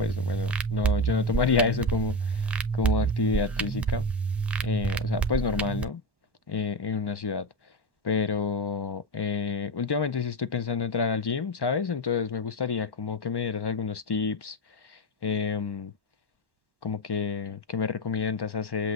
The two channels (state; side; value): normal; both; correlation 0.16